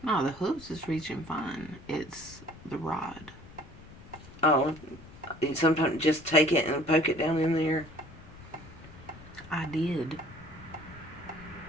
No, the hooves is reaching fine. It's the rod. Oh, you sometimes just take it and poke it down in there. I did.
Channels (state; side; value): noise; left; rumble, 19 dB below the sound